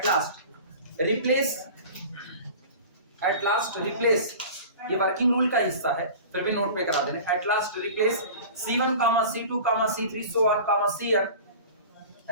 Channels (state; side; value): inverted; both; correlation -0.38